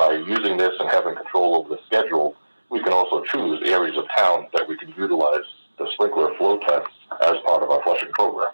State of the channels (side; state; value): both; inverted; correlation -1.00